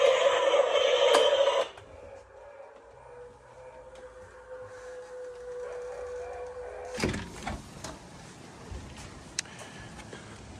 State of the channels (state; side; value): identical; both; correlation 1.00